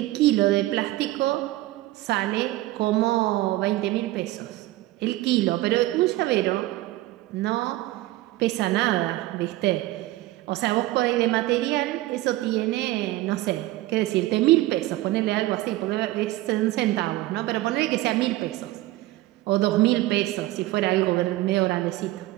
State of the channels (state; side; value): quieter; left; 17.2 dB